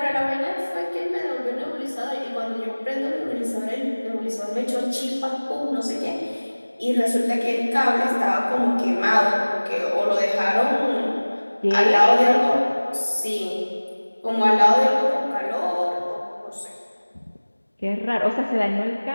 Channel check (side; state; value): both; inverted; correlation -1.00